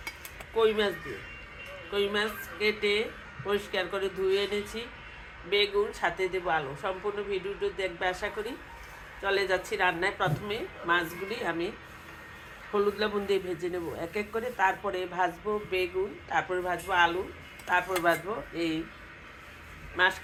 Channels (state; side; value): identical; both; correlation 1.00